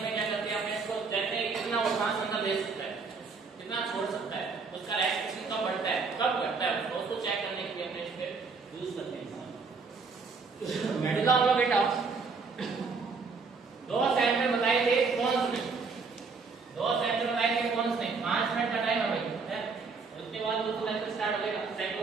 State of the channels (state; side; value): quieter; left; 4.7 dB